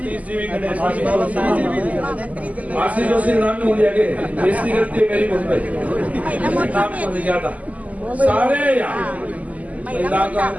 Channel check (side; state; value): left; late; 0.074 ms